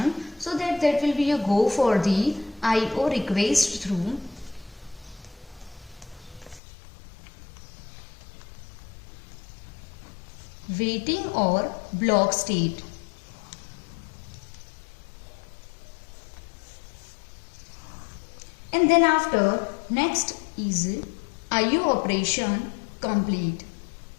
so that will be a go for the IO request through waiting or block state. And then after, next is IO operation complete.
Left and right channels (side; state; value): right; drops out; at 6.6 s